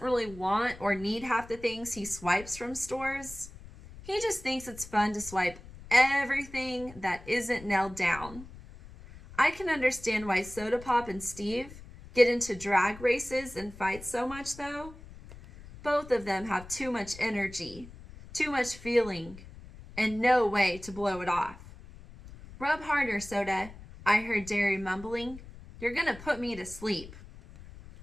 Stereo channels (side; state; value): left; noise; rumble, 17 dB below the sound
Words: really want or need half the things he swipes from stores. He just thinks it's fun to swipe everything that isn't nailed down. I can understand why Soda Pop and Steve get into drag races and fight so much, though. Both of them have too much energy, too much feeling, and no way to blow it off. "Rub harder, Soda," I heard Derry mumbling. "You're gonna put me to sleep."